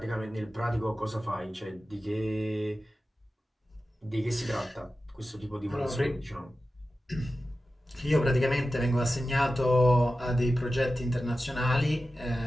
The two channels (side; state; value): both; normal; correlation 0.94